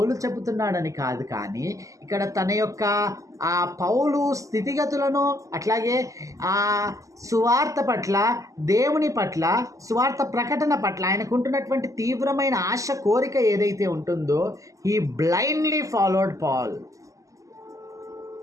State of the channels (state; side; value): late; left; 0.16 ms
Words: చెబుతున్నాడని కాదు, కానీ ఇక్కడ తన యొక్క ఆ పౌలు స్థితిగతులను, అట్లాగే ఆ సువార్త పట్ల, దేవుని పట్ల, సువార్త ప్రకటన పట్ల ఆయనకుంటున్నటువంటి తీవ్రమైన ఆశ, కోరిక ఏదైతే ఉంటుందో, హీ బ్లైండ్లీ ఫాలోడ్ పాల్.